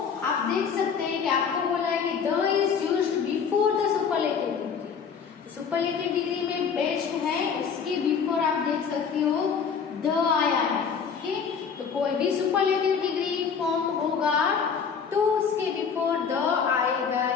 आप देख सकते हैं कि आपको बोला है कि the is used before the superlative degree. Superlative degree में बेस्ट है, उसके बिफोर आप देख सकते हो द आया है। ओके, तो कोई भी सुपरलेटिव डिग्री फॉर्म होगा तो उसके बिफोर द आएगा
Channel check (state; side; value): quieter; right; 6.4 dB